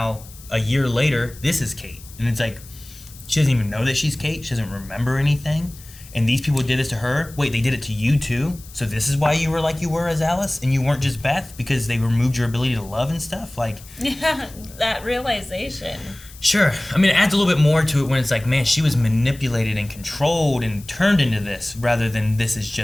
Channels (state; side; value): noise; left; hiss, 20 dB below the sound